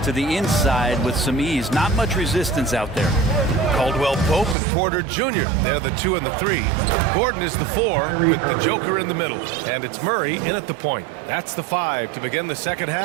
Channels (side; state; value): left; drops out; at 4.5 s